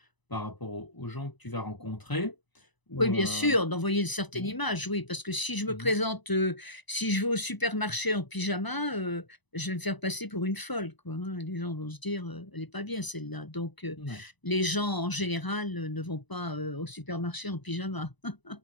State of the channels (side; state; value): right; late; 1.0 ms